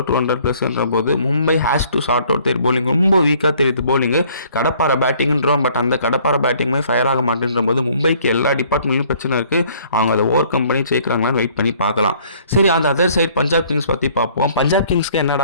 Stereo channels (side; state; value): both; inverted; correlation -0.59